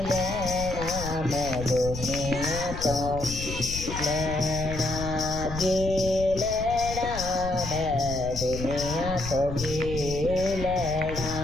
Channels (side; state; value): left; noise; rumble, 8 dB below the sound